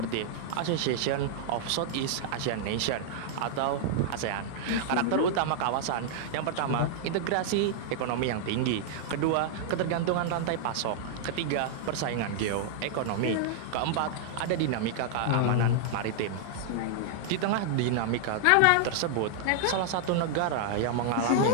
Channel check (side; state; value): both; different; correlation -0.01